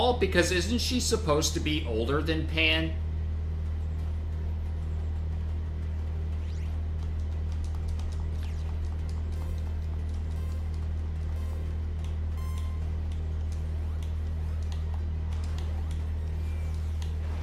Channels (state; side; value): identical; both; correlation 1.00